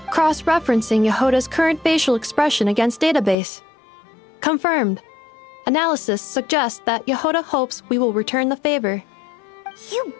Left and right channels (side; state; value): right; drops out; at 3.4 s